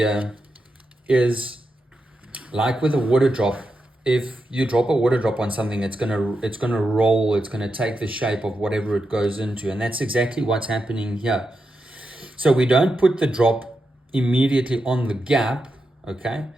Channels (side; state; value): both; normal; correlation 0.87